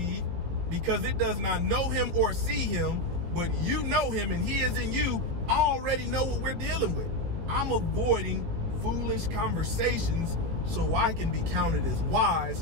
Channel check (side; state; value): left; late; 18 ms